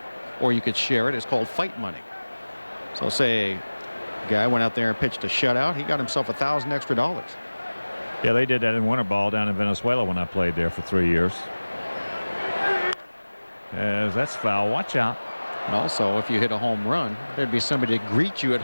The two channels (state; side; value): inverted; both; correlation -1.00